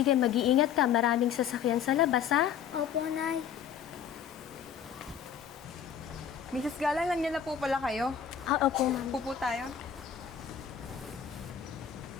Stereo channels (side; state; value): right; quieter; 8.2 dB